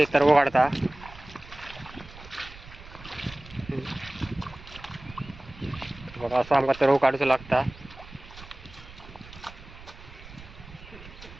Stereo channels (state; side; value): noise; right; rumble, 18 dB below the sound